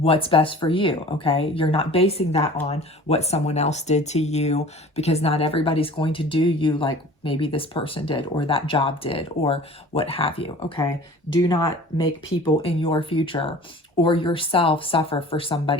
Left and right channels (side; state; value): both; normal; correlation 0.44